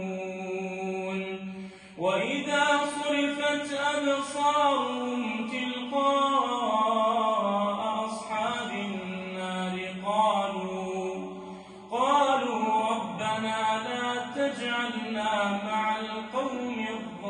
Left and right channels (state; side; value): identical; both; correlation 1.00